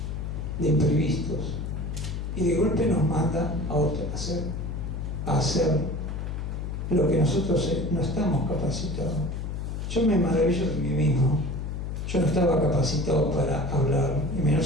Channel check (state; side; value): noise; left; hum, 4 dB below the sound